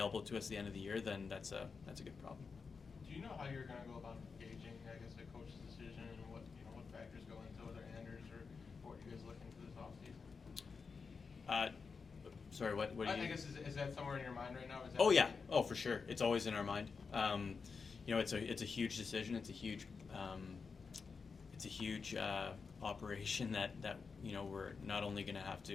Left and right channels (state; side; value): quieter; right; 5.1 dB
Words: to us at the end of the year, then that's a good problem. Do you know how you're going to go about gauging, I guess, a coach's decision and what factors go into whether Anders or what you guys looking for this offseason? Sorry, what do you? I guess is that somewhere in your mind right now? Is that Oh yeah, oh for sure, it's always in our mind. You know, it's a huge decision. It's a huge operation that you know we're not only going to have